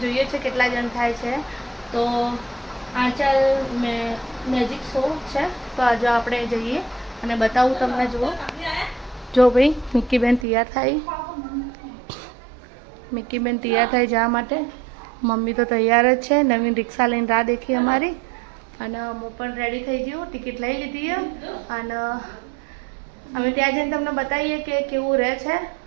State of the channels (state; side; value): drops out; left; at 10.5 s